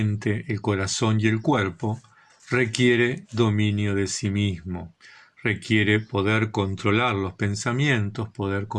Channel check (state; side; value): identical; both; correlation 1.00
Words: el corazón y el cuerpo requiere dominio de sí mismo. Requiere poder controlar los pensamientos, poder